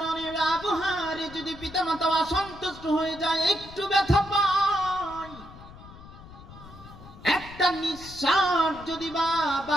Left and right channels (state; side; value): noise; left; rumble, 18 dB below the sound